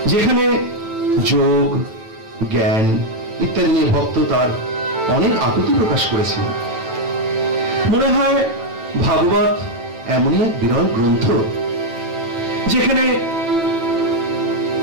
যেখানে যোগ, জ্ঞান ইত্যাদি নিয়ে ভক্ত তার অনেক আকুতি প্রকাশ করেছেন। মনে হয় ভাগবত এমনই এক বিরল গ্রন্থ যেখানে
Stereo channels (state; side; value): late; left; 9.0 ms